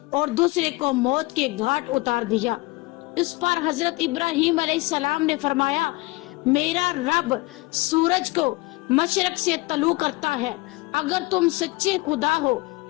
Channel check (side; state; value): right; quieter; 23.0 dB